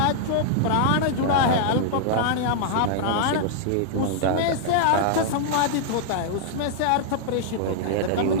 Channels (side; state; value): both; different; correlation -0.01